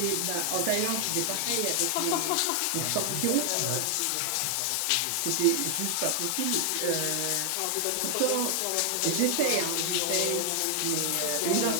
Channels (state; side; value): different; both; correlation 0.00